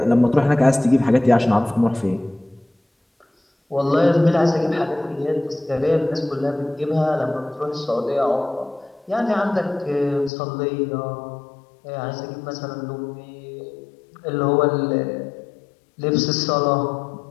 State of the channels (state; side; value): drops out; right; at 10.3 s